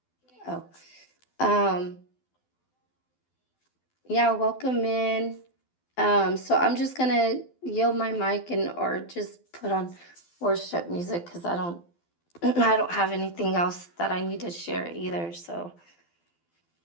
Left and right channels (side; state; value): right; late; 12 ms